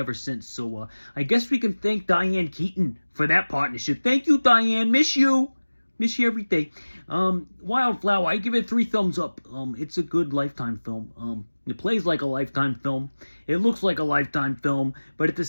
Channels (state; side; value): inverted; both; correlation -1.00